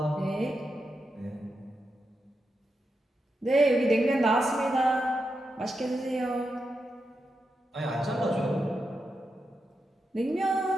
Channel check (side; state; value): both; normal; correlation 0.87